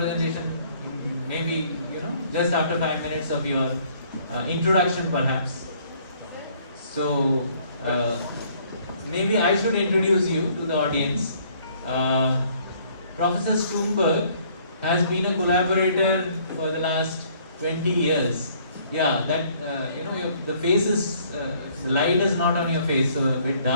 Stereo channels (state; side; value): inverted; both; correlation -0.61